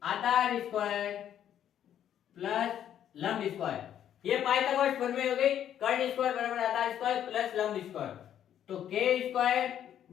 आधार स्क्वायर प्लस लंब स्क्वायर। ये पाइथागोरस प्रमेय हो गई। कर्ण स्क्वायर बराबर आधार स्क्वायर प्लस लंब स्क्वायर। तो के स्क्वायर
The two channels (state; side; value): quieter; right; 10.2 dB